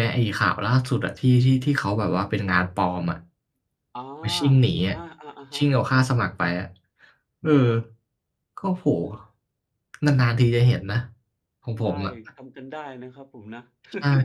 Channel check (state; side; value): identical; both; correlation 1.00